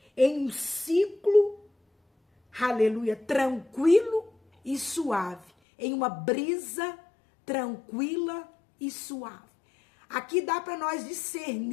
em um ciclo, aleluia, tranquilo e suave, em uma brisa tranquila e suave. Aqui dá para nós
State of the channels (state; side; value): drops out; right; at 5.5 s